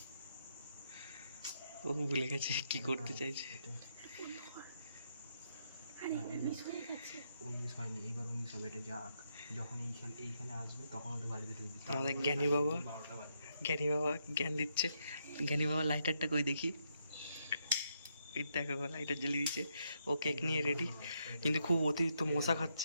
ও ভুলে গেছে কি করতে চাইছে। 19 হয়নি, এবার 19 হবে। এটা যাক, যখন এইখানে আসবে তখন ওদের বাড়িতে ঢুকবি। আমাদের জ্ঞানী বাবা জ্ঞান দিচ্ছে। জ্ঞানী বাবা লাইটারটা কই দেখি। এই দেখো লাইটার জ্বালিয়ে দিচ্ছে। ও কেক নিয়ে রেডি, কিন্তু খুব অতিরিক্ত মশা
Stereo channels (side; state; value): both; inverted; correlation -0.78